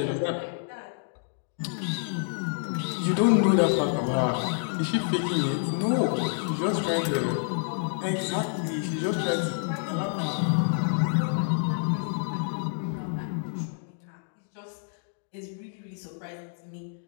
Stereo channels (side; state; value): right; silent; digital silence